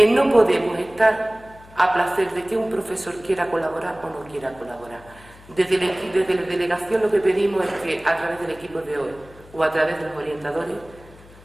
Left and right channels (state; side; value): noise; left; hum, 23 dB below the sound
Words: no podemos estar a placer de que un profesor quiera colaborar o no quiera colaborar. Desde la delegación lo que pedimos es que a través del equipo de hoy o a través de los orientadores